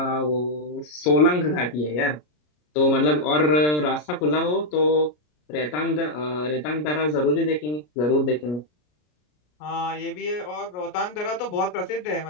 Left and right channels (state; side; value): late; right; 33 ms